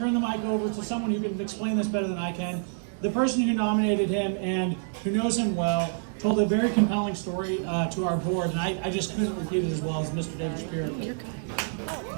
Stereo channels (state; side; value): silent; left; digital silence